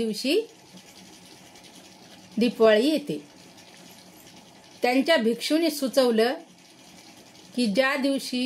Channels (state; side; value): identical; both; correlation 1.00